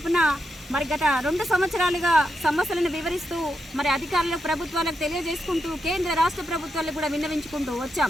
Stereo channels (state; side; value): normal; both; correlation 0.84